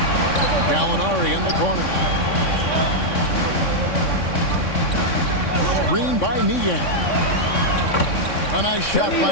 Gallinari in the corner. Screen by Niang. A nice shot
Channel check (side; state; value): right; late; 3.6 ms